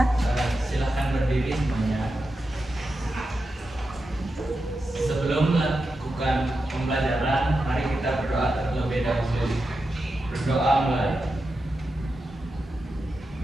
Silahkan berdiri semuanya. Sebelum melakukan pembelajaran, mari kita berdoa terlebih dahulu. Berdoa mulai.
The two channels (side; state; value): both; normal; correlation 0.89